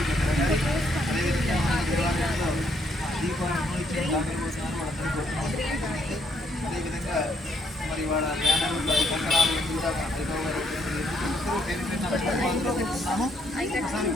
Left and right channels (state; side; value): normal; both; correlation 0.71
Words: అదేవిధంగా మన దేవాలయంలో దీపాలను ఇచ్చిన దానికోసారి వాళ్ళందరూ కోరుతున్నాము. అదేవిధంగా మరి వాళ్ళ జ్ఞానాలు కంకణాలు కూడా ఉన్నాము. ఒకసారి